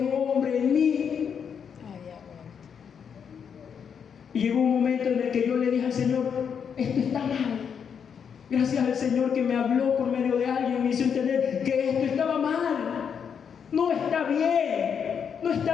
hombre en mí. Y llegó un momento en el que yo le dije al Señor: esto está mal. Gracias al Señor que me habló por medio de alguien, me hizo entender que esto estaba mal. No está bien, no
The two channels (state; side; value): quieter; right; 7.2 dB